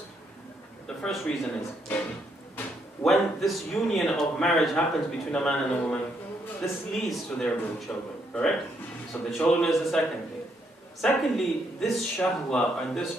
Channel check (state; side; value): normal; both; correlation 0.74